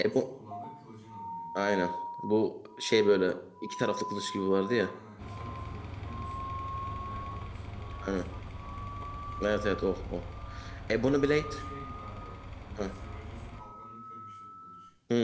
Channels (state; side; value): identical; both; correlation 1.00